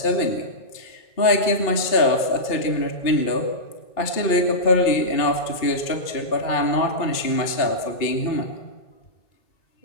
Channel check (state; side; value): late; right; 2.7 ms